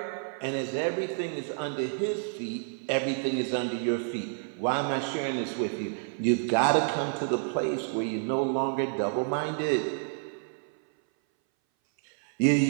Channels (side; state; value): left; silent; 58 dB below the other